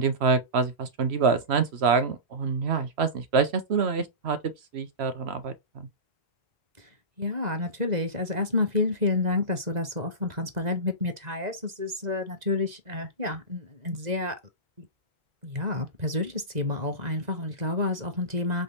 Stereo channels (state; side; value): late; left; 2.0 ms